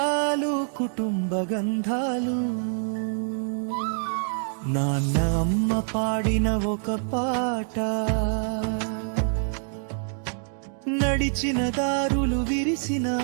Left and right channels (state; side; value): silent; left; 61 dB below the other